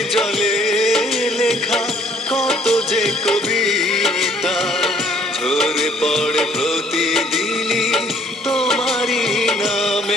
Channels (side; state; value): both; normal; correlation 0.60